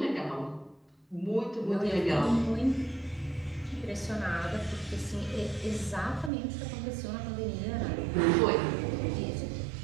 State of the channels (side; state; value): left; drops out; at 6.3 s